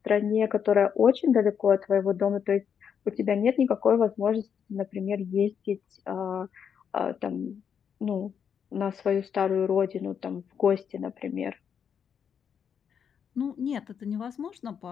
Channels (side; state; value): right; quieter; 7.5 dB